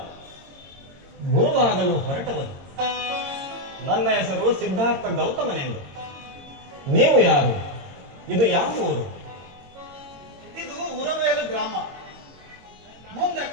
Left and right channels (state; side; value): late; left; 22 ms